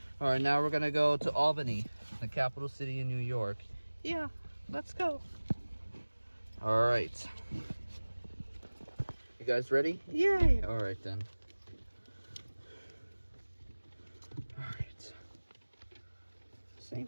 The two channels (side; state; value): both; inverted; correlation -1.00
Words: Alright, now we're gonna go to Albany, the capital city in New York. Yeah, let's go. Alright. You guys ready? Yay! Alright then. Alright. Same